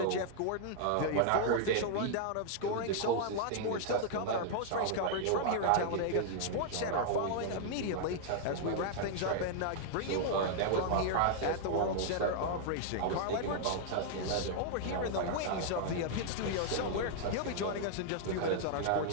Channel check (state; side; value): different; both; correlation -0.01